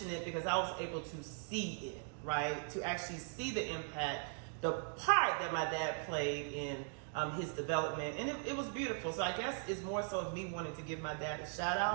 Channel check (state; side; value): silent; left; 51 dB below the other